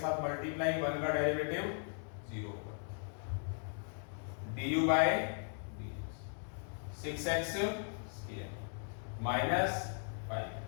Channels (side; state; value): right; silent; 52 dB below the other